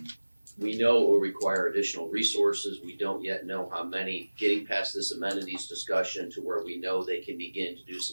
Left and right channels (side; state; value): both; inverted; correlation -1.00